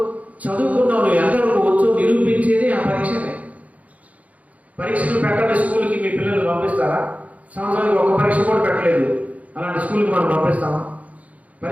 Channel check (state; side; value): late; left; 0.070 ms